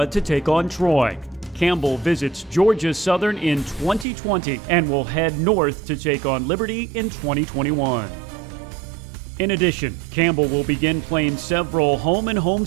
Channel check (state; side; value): drops out; left; at 4.0 s